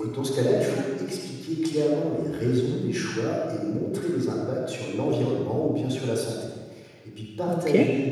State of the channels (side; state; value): both; identical; correlation 1.00